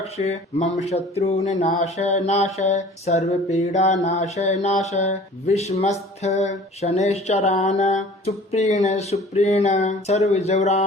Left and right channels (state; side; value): normal; both; correlation 0.47